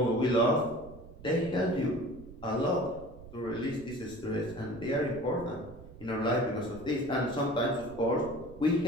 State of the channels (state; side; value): noise; right; rumble, 17 dB below the sound